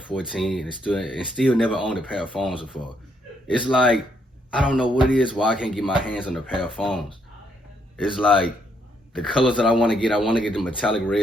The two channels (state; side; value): normal; both; correlation 0.74